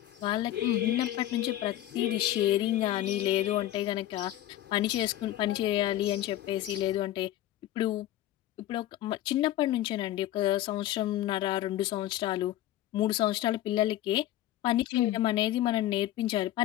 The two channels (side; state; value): right; quieter; 13.8 dB